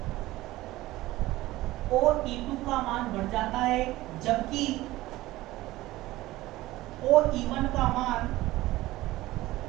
OE2 का मान बढ़ जाता है, जबकि OE1 का मान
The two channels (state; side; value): quieter; left; 17.5 dB